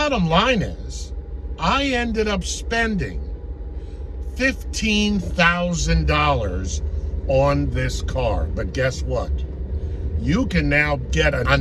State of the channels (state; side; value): identical; both; correlation 1.00